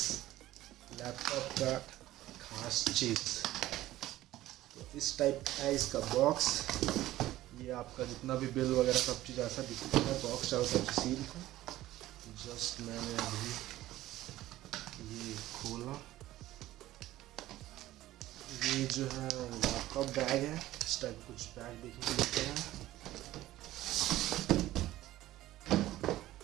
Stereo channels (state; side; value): quieter; left; 15.3 dB